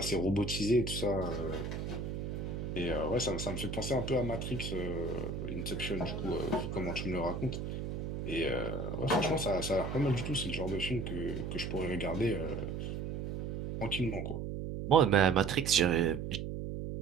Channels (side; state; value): right; noise; hum, 4 dB below the sound